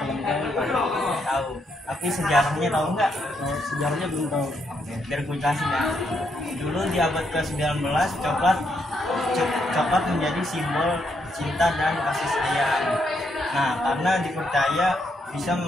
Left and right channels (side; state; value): both; normal; correlation 0.77